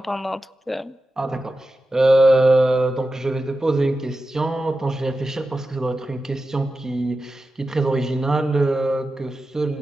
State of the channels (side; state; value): both; normal; correlation 0.92